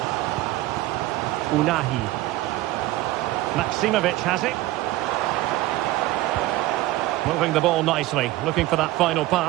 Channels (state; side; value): quieter; left; 17.0 dB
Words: Unahi. Maksimovic has it. Moving the ball nicely, looking for that final